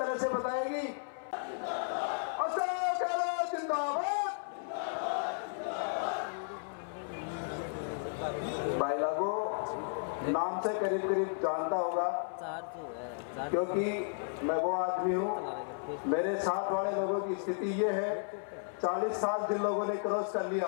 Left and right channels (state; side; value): silent; right; 55 dB below the other